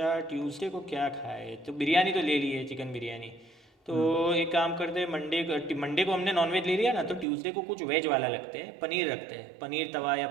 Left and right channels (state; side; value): drops out; left; at 7.2 s